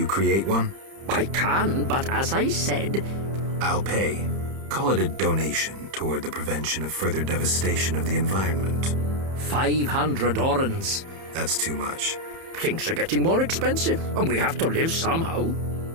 create one? I can, but as I said... I'll pay. Call it a donation toward the prevention of further devastation of the environment. 500 orens. That's too much. Things are getting more expensive, and we have to live somehow.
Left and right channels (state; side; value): late; left; 30 ms